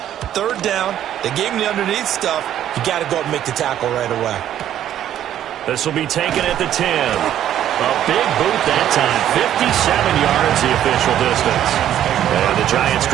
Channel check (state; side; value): quieter; left; 11.1 dB